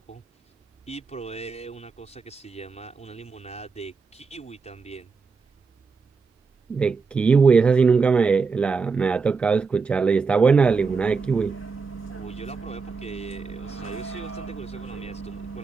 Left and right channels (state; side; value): quieter; left; 4.9 dB